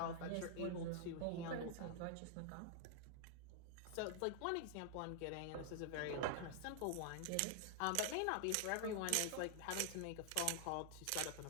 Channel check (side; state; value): both; different; correlation 0.00